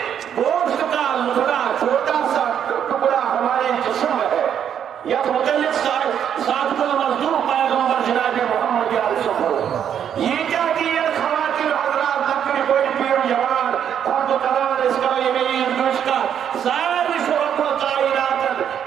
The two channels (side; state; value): left; quieter; 8.9 dB